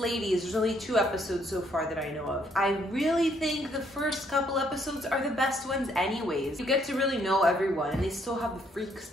There's only 2 episodes so far that I know of. I really think the first couple episodes are the best ones anyways. You get to really know everyone, and they still have the freaks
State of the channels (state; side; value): normal; both; correlation 0.69